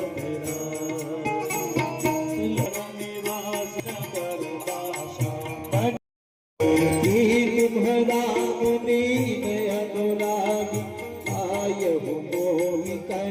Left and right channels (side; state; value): both; identical; correlation 1.00